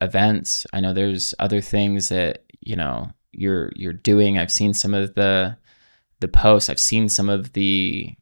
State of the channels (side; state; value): both; inverted; correlation -1.00